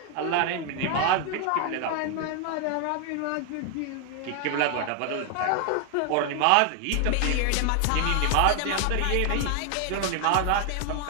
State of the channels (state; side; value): different; both; correlation 0.00